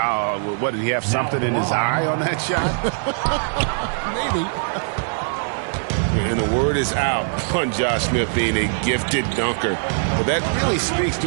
what, did he have something in his eye on that shot? Maybe. And the word is out on Josh Smith being a gifted dunker. But that really speaks to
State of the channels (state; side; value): silent; left; digital silence